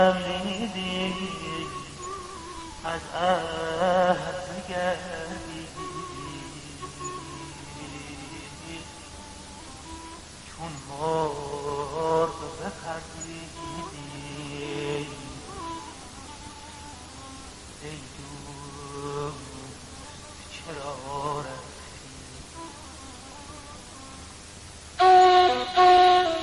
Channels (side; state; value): both; identical; correlation 1.00